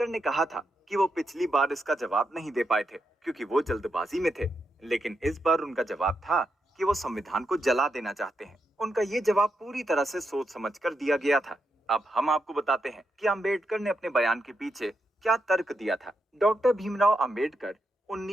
ने कहा था कि वो पिछली बार इसका जवाब नहीं दे पाए थे क्योंकि वो जल्दबाजी में थे, लेकिन इस बार उनका जवाब था कि वो संविधान को जला देना चाहते हैं। उनका ये जवाब पूरी तरह से सोच समझकर दिया गया था। अब हम आपको बताते हैं कि अंबेडकर ने अपने बयान के पीछे क्या तर्क दिया था। डॉक्टर भीमराव अंबेडकर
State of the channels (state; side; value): normal; both; correlation 0.84